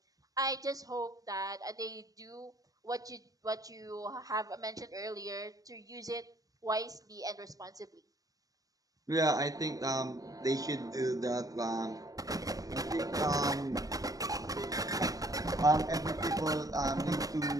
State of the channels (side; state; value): left; late; 0.17 ms